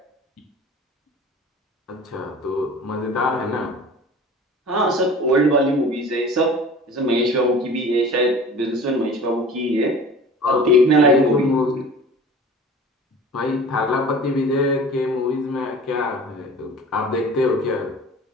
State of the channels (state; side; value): normal; both; correlation 0.41